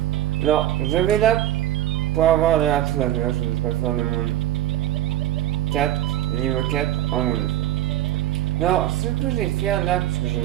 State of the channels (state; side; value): quieter; left; 13.6 dB